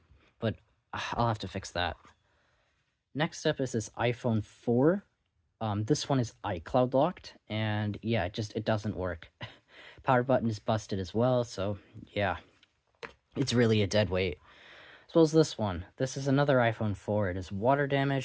But I'll have to fix that. Next up is this iPhone 4. This one is iCloud locked, and yeah, it doesn't work. Power button is busted as well, so yeah, it's really a dead weight. As well as this one. This is another iPhone 4. It is water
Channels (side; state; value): both; identical; correlation 1.00